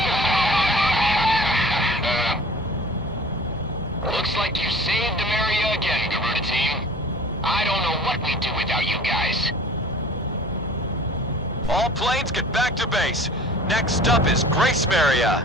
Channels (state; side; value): normal; both; correlation 0.44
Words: Looks like you saved Demaria again, Garuda team. I don't know what we'd do without you guys. All planes get back to base. Next up is Grace Maria.